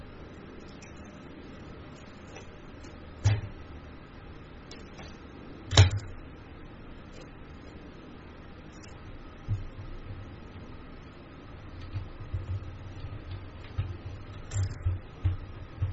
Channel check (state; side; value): identical; both; correlation 1.00